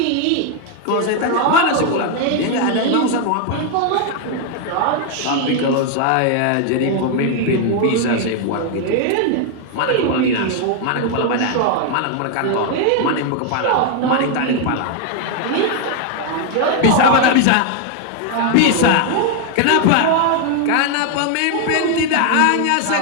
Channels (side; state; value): both; different; correlation 0.00